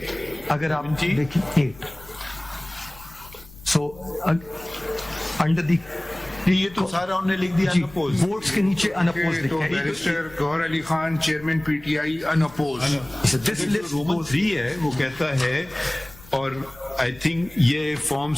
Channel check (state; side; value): noise; left; rumble, 22 dB below the sound